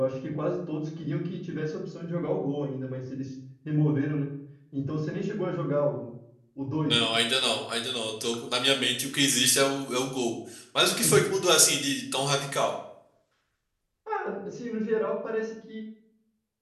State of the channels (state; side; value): identical; both; correlation 1.00